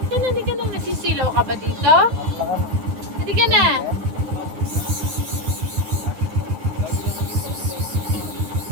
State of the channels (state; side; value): late; left; 9.8 ms